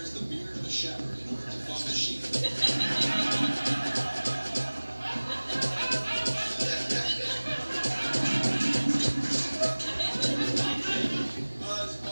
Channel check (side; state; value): both; inverted; correlation -1.00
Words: the beard of a shepherd in order to fuck the sheep.